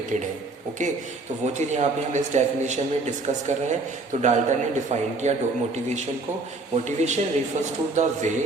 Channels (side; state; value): left; quieter; 3.4 dB